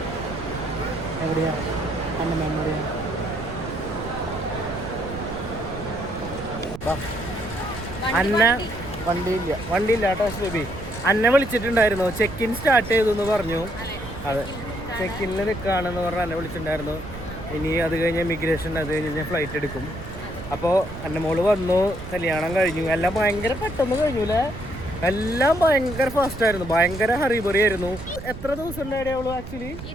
എവിടെയാ അന്നമ്മ? എവിടെയാ? അന്ന വണ്ടിയില്ല കേട്ടോ ബേബി. അന്നെ വിളിച്ചിട്ടുണ്ടായിരുന്നു. ചെക്ക് ഇൻ സ്റ്റാർട്ട് ചെയ്തു എന്ന് പറഞ്ഞു. അതെ, ചെക്ക് ഇന്നിൽ നിൽക്കുകയാണെന്ന് പറഞ്ഞ് എന്നെ വിളിച്ചിട്ടുണ്ടായിരുന്നു. ഇനി അത് കഴിഞ്ഞ് ഇമിഗ്രേഷൻ, അത് കഴിഞ്ഞ് ഫ്ലൈറ്റ് എടുക്കും. അപ്പോൾ എൻ്റെ മോള് വന്നു, കല്യാണം കഴിഞ്ഞു. എല്ലാം ഭയങ്കര പെട്ടെന്ന് കഴിഞ്ഞു അല്ലേ? എല്ലാം ഭയങ്കര ഫാസ്റ്റ് ആയിരുന്നു, ഭയങ്കര ഹറിബറി ആയിരുന്നു. എത്ര ദിവസം ഉണ്ടായിരുന്നു അവള്? ആക്ച്വലി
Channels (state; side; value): noise; right; rumble, 11 dB below the sound